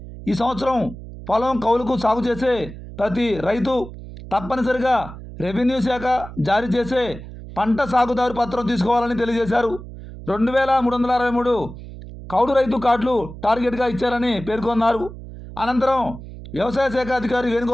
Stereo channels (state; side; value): noise; right; hum, 13 dB below the sound